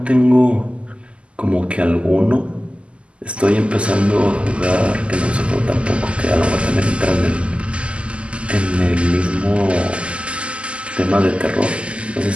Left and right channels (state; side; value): late; left; 0.055 ms